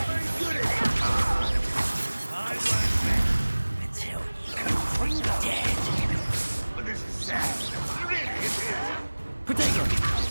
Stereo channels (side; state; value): both; inverted; correlation -1.00